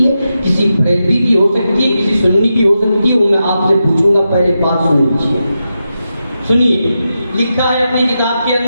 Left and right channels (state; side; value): inverted; both; correlation -0.88